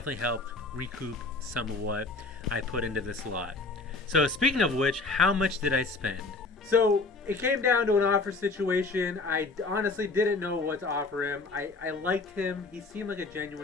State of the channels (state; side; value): quieter; right; 3.6 dB